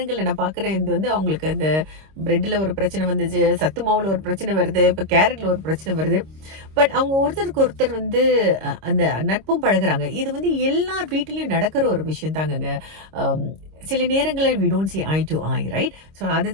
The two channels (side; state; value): left; late; 26 ms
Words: நான் பார்க்குறேன், இது வந்து அவங்களுக்கு அந்த பிரெட்டில் ஒரு பிரச்சனை வந்துச்சு, சத்து மாவில் ஒரு பிரச்சனை வருது, இப்போ கேரட்டில் ஒரு பிரச்சனை வருது. பட் அவங்க ஒருத்தருக்கு ஒருத்தர் வந்து அந்த நட்பும் பழகுறாங்க. இது வந்து எல்லார் வீட்டிலையும் நடக்கிற ஒரு விஷயம் தாங்கங்க. சில நேரங்களில் we don't see eye to eye, right? So